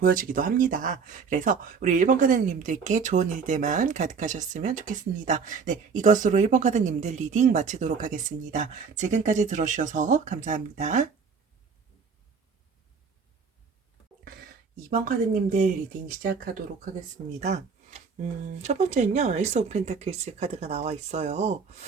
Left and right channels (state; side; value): quieter; left; 5.5 dB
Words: 합니다. 그래서 우리 1번 카드님들께 좋은 일들만 가득하셨으면 좋겠습니다. 네, 이것으로 1번 카드님들 리딩 마치도록 하겠습니다. 지금까지 들어주셔서 감사합니다. 2번 카드님들 리딩 시작하도록 하겠습니다. 첫 번째는요, 에이스 오브 펜타클스 카드가 나와 있어요.